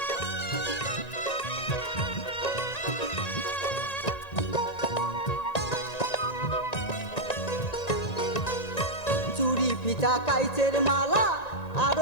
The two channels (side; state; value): right; late; 1.9 ms